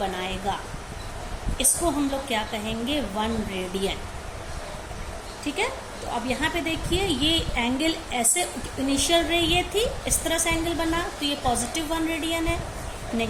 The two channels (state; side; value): identical; both; correlation 1.00